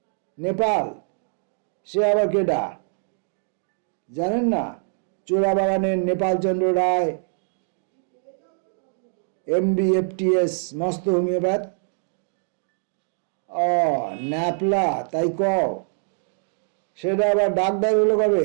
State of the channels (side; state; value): left; silent; digital silence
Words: নেপাল? সে আবার কেডা? জানেন না? চোরাবাগানের নেপালচন্দ্র রায়, MBFTS, মস্ত হোমিওপ্যাথ। ও ন্যাপলা, তাই কও? সেটা আবার ডাক্তার হলো